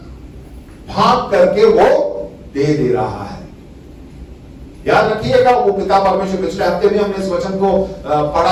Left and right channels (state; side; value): identical; both; correlation 1.00